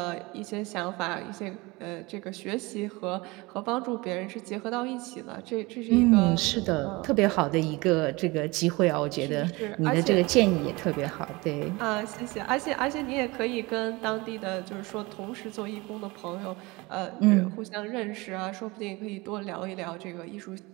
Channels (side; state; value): left; quieter; 23.7 dB